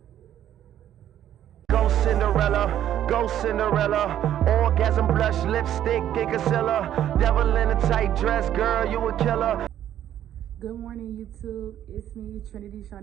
Go Cinderella, orgasm blush, lipstick, and concealer. Devil in a tight dress, girl, you a killer. Good morning, YouTube. It's me, Trinity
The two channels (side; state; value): left; quieter; 11.2 dB